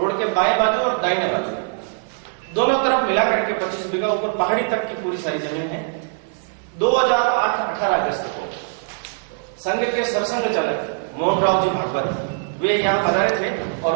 के बाएं बाजू और दाहिने बाजू दोनों तरफ मिला करके 25 बीघा, ऊपर पहाड़ी तक की पूरी सारी जमीन है। 2008-18 अगस्त को संघ के सरसंघ चालक मोहन राव जी भागवत वे यहाँ पधारे थे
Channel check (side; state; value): left; silent; 56 dB below the other